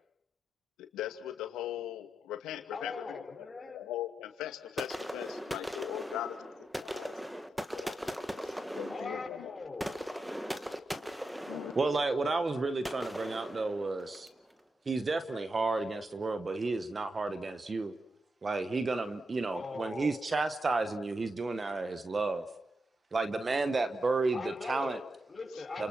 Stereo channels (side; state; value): both; normal; correlation 0.87